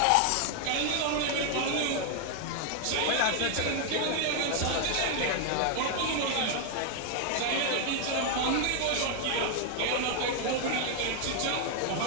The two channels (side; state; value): both; different; correlation 0.00